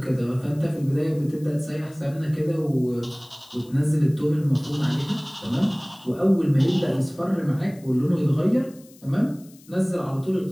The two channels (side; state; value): left; noise; hiss, 26 dB below the sound